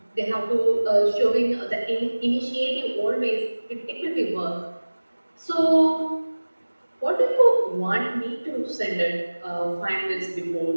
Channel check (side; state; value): both; inverted; correlation -1.00